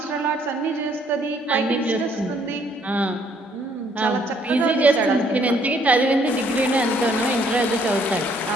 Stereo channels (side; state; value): both; normal; correlation 0.66